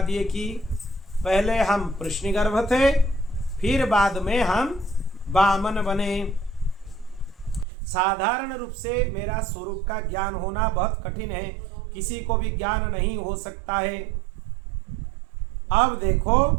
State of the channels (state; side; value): drops out; left; at 7.7 s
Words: दिए कि पहले हम पृश्निगर्भ थे, फिर बाद में हम वामन बने। साधारण रूप से मेरा स्वरूप का ज्ञान होना बहुत कठिन है, किसी को भी ज्ञान नहीं हो सकता है। अब देखो,